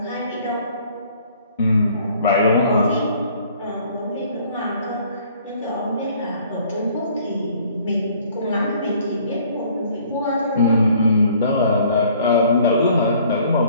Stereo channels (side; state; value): both; inverted; correlation -0.57